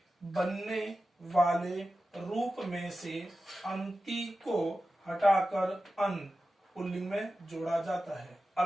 बनने वाले रूप में से अंति को हटाकर अन पुल्लिंग में जोड़ा जाता है।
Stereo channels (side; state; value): both; normal; correlation 0.93